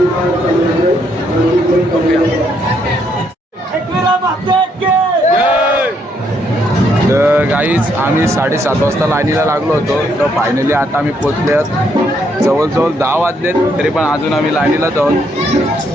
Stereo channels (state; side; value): normal; both; correlation 0.73